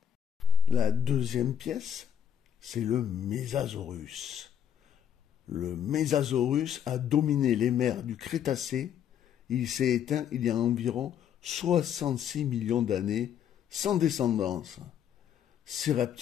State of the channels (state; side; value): quieter; right; 8.6 dB